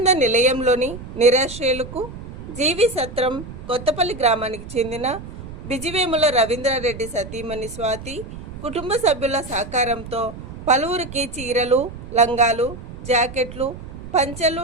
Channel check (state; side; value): noise; right; rumble, 12 dB below the sound